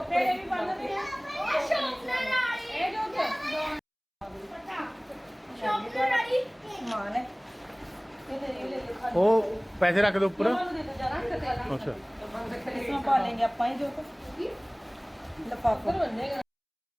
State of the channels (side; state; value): both; identical; correlation 1.00